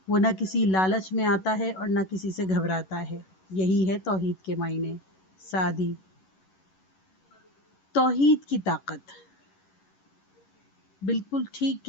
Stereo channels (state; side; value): late; right; 11 ms